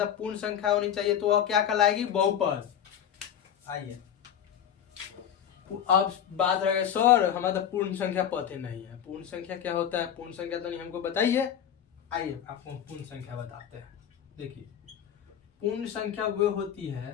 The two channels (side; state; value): right; quieter; 9.4 dB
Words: पूर्ण संख्या होनी चाहिए, तो वह क्या कहलाएगी, बहुपद। आइए अब बात रह गई सर हमारा तो पूर्ण संख्या पता नहीं है। पूर्ण संख्या क्या होता है, पूर्ण संख्या तो नहीं हमको बताइए। आइए आपको हम पूर्ण संख्या बताते हैं। देखिए पूर्ण संख्या वो होती